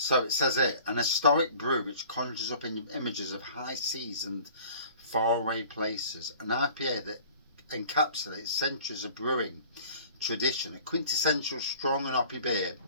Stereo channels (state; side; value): inverted; both; correlation -0.48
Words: it says here, an historic brew which conjures up images of high seas and faraway places. An IPA that encapsulates centuries of brewing tradition. A quintessential strong and hoppy beer